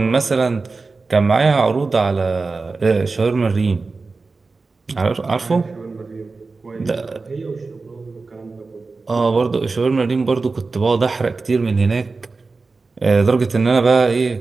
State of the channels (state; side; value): quieter; left; 4.0 dB